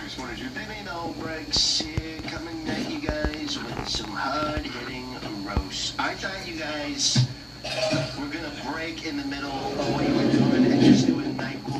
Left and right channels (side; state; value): both; identical; correlation 1.00